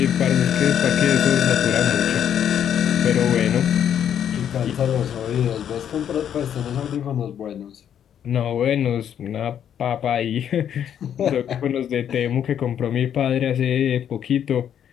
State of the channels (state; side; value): quieter; right; 9.3 dB